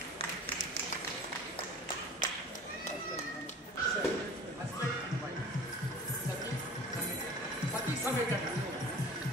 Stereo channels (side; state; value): both; normal; correlation 0.43